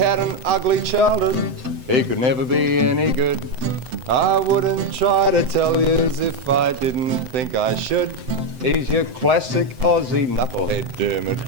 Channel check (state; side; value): late; left; 7.8 ms